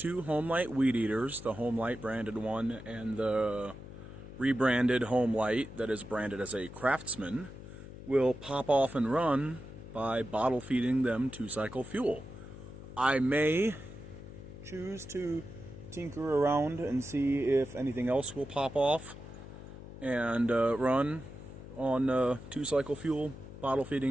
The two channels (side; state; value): left; noise; hum, 14 dB below the sound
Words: Homelite weed eaters, the Homelite branded one and the rebranded Homelite that is branded as a Craftsman, will pop off and run by bottle feeding them 2-cycle fuel. I may choose to tinker around and see if anything else will pop off and run on 2-cycle fuel, bottle